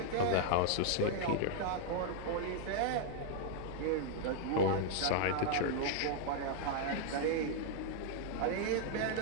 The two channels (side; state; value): both; different; correlation -0.01